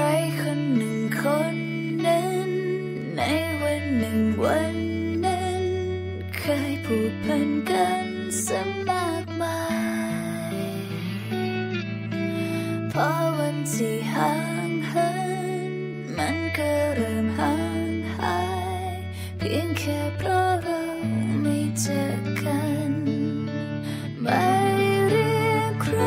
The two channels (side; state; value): both; identical; correlation 1.00